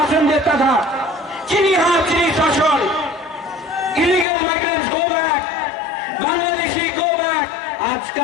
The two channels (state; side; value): drops out; right; at 4.2 s